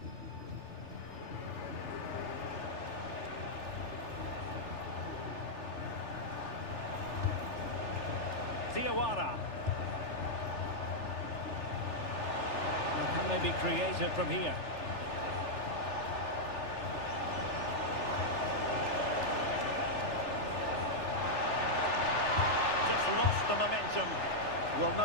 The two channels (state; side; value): late; right; 3.4 ms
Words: Diawara. Can they be creative from here? Just lost the momentum. Well,